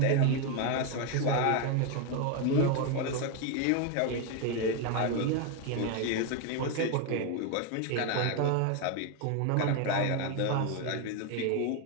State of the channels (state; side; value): different; both; correlation 0.01